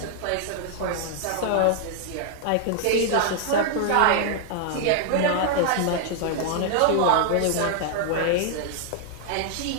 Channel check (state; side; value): different; both; correlation 0.00